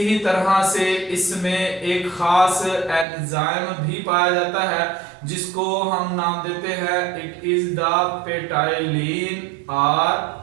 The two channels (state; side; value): drops out; left; at 3.1 s